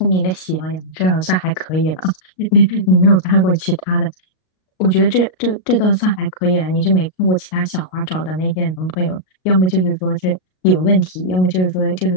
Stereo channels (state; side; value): late; right; 38 ms